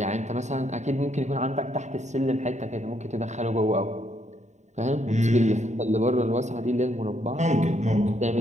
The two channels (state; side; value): late; left; 0.34 ms